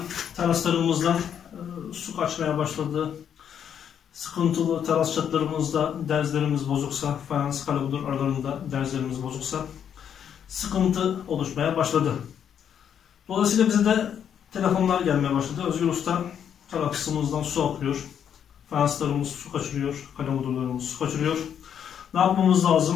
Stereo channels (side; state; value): right; quieter; 8.6 dB